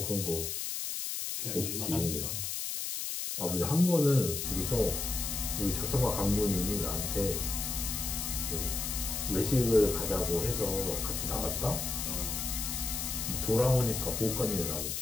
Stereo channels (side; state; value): left; noise; hiss, 3 dB below the sound